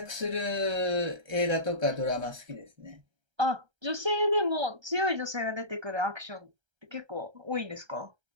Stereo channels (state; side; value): late; left; 1.3 ms